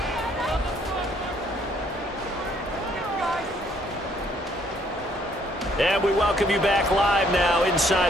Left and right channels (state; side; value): normal; both; correlation 0.65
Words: And we welcome you back live now